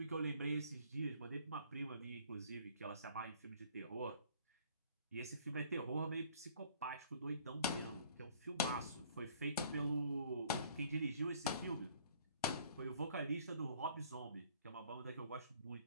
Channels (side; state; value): both; inverted; correlation -0.57